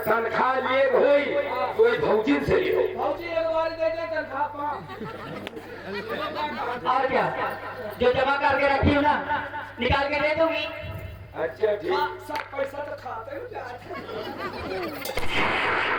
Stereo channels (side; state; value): both; identical; correlation 1.00